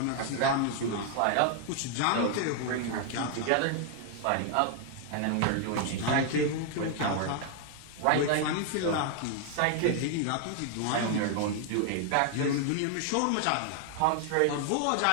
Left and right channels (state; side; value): different; both; correlation 0.00